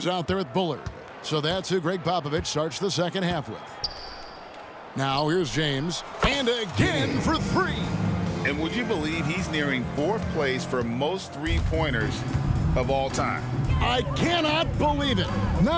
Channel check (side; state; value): both; identical; correlation 1.00